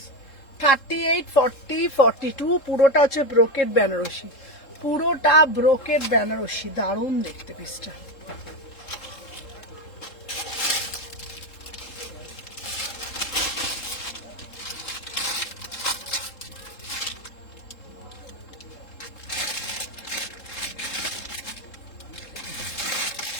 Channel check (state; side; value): late; right; 3.7 ms